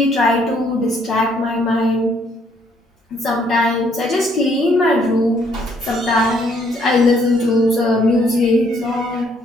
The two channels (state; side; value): normal; both; correlation 0.67